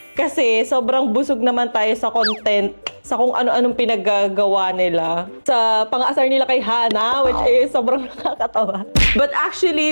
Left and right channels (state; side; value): inverted; both; correlation -1.00